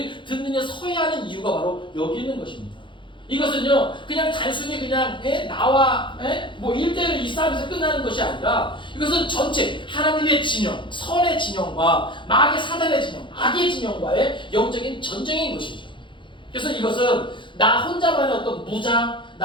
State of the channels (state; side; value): late; right; 0.23 ms